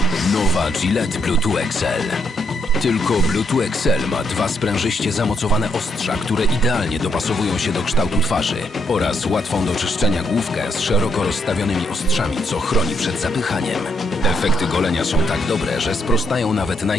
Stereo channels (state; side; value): normal; both; correlation 0.76